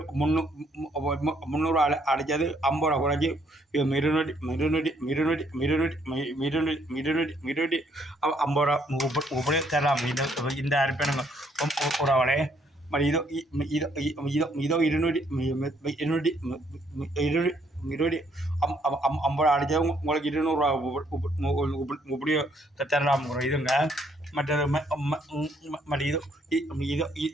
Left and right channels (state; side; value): normal; both; correlation 0.68